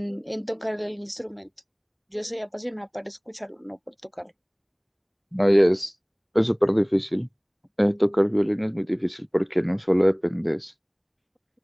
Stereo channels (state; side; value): identical; both; correlation 1.00